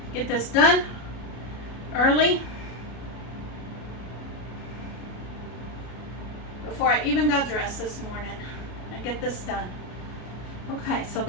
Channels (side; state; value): right; late; 33 ms